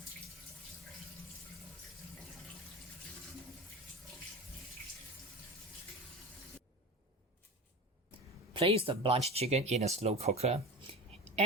Place the blanched chicken in a slow cooker.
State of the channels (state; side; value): normal; both; correlation 0.30